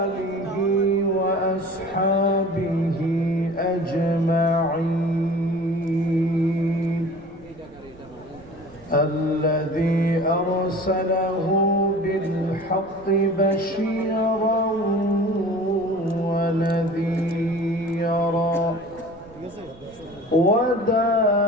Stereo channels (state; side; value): noise; right; rumble, 23 dB below the sound